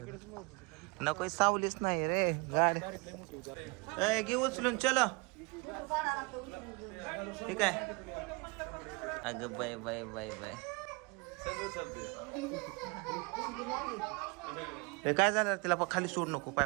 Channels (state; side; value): quieter; left; 28.3 dB